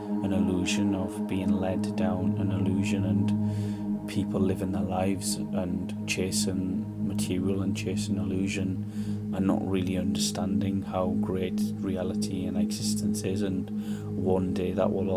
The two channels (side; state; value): both; identical; correlation 1.00